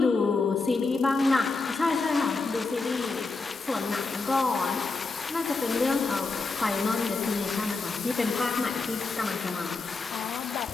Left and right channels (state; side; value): quieter; right; 3.9 dB